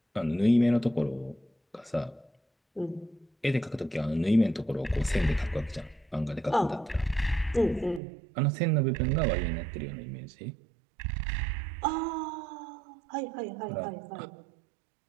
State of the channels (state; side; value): drops out; left; at 8.0 s